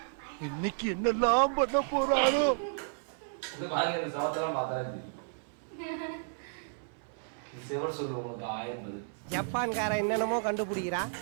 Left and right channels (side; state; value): left; silent; 56 dB below the other